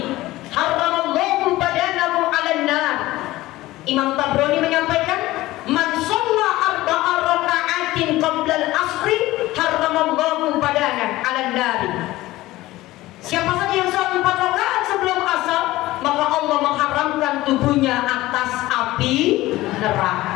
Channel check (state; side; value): quieter; right; 17.5 dB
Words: haramallahu badanahu 'alan nar. Imam Tabrani menyampaikan, man sholla arba'a raka'atin qabla al-asri haramallahu badanahu 'alan nar. Siapa saja yang sholat 4 rakaat sebelum asar, maka Allah mengharamkan tubuhnya atas api